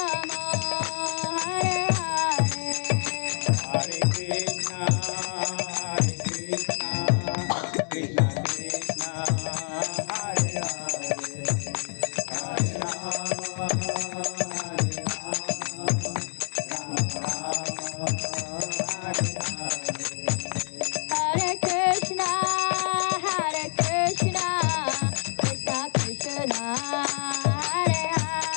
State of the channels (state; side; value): silent; right; digital silence